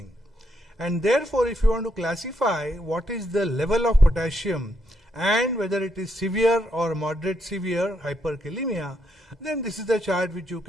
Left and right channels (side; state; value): both; normal; correlation 0.77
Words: And therefore, if you want to classify what is the level of potassium and whether it is severe or moderate severe hyperkalemia, then this is the chart which you